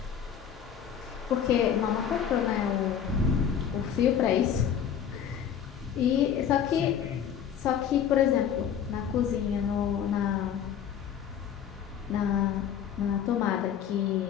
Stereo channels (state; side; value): quieter; right; 8.6 dB